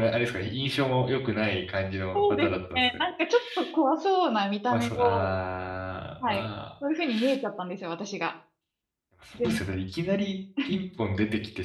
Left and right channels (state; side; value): identical; both; correlation 1.00